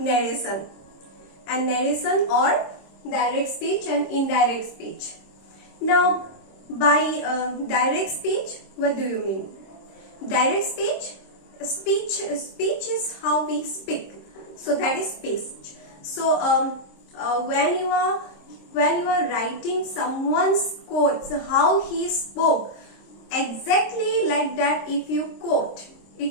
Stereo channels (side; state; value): right; late; 26 ms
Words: and narration or direct speech and indirect speech. Now by direct speech, what do you mean? Direct speech is how we speak, so that is speech. So when you are writing someone's quotes, how he spoke, exactly like that, if you quote,